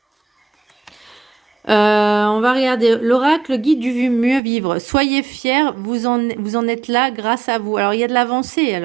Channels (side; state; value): left; drops out; at 4.4 s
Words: On va regarder l'oracle guide du mieux vivre. Soyez fiers, vous en êtes là grâce à vous. Alors il y a de l'avancée,